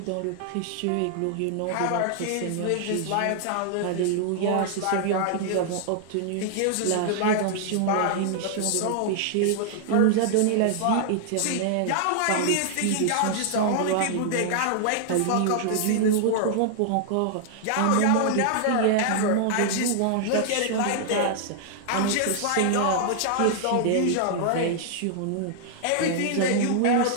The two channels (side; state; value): both; different; correlation -0.01